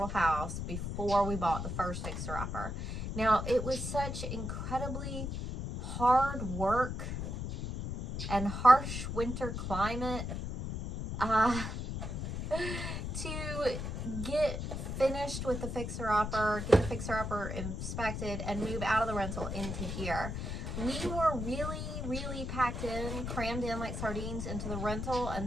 house before we bought the first fixer-upper. Now, it was such incredibly hard work and harsh winter climate to get finished with the fixer-upper, get the fixer-upper inspected, and move out of the rental into here. We were really packed in, crammed in like sardines into the rental,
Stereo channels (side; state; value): left; noise; rumble, 4 dB below the sound